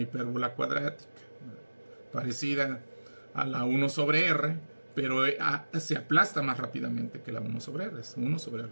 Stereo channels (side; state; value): both; inverted; correlation -1.00